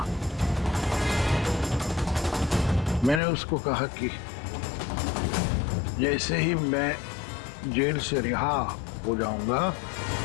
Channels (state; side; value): drops out; right; at 3.2 s